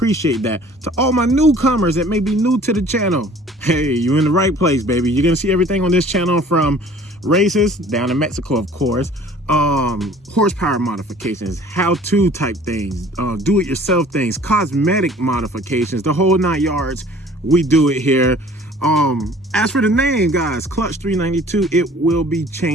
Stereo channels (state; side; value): normal; both; correlation 0.50